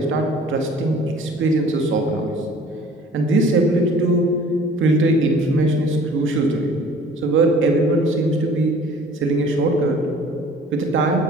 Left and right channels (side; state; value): both; normal; correlation 0.50